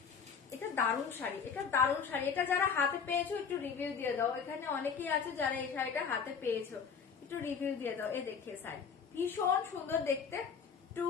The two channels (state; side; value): quieter; right; 6.3 dB